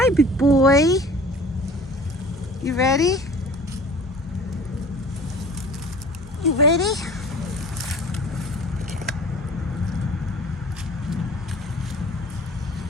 big boy. You ready? You ready?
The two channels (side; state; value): both; normal; correlation 0.44